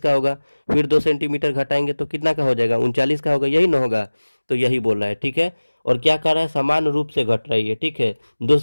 का होगा। फिर 2 सेंटीमीटर घटाएंगे तो कितना का हो जाएगा, 39 का होगा, यही ना होगा। तो यही बोल रहा है, ठीक है। और क्या कर रहा है, समान रूप से घट रही है, ठीक है। 2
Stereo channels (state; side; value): inverted; both; correlation -1.00